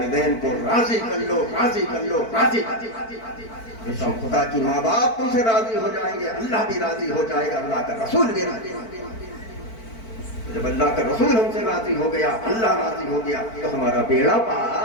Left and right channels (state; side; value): late; right; 4.5 ms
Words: کو راضی کر لو، راضی کر لو، راضی کر لو۔ خدا کی ماں باپ تم سے راضی ہو جائیں گے، اللہ بھی راضی ہو جائے گا، اللہ کا رسول بھی راضی ہو جائے گا۔ جب اللہ کا رسول ہم سے راضی ہو گیا، اللہ راضی ہو گیا، تو ہمارا بیڑا